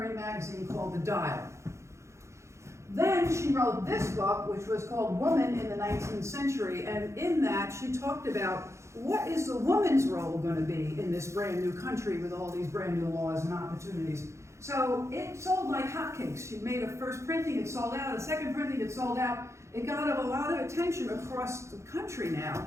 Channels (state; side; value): late; left; 0.14 ms